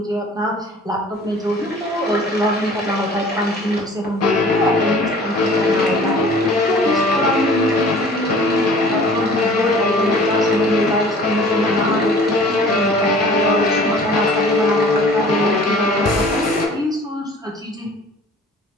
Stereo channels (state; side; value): normal; both; correlation 0.48